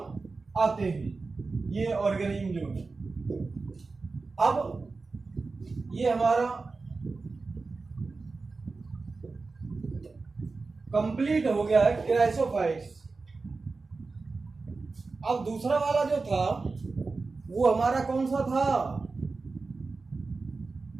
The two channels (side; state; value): left; quieter; 4.0 dB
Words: आते हैं ये ऑर्गेनिज्म जो है। अब ये हमारा कंप्लीट हो गया है क्राइसोफाइट्स। अब दूसरा वाला जो था वो हमारा कौन सा था?